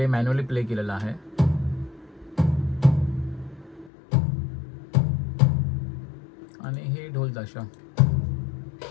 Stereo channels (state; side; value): drops out; right; at 3.9 s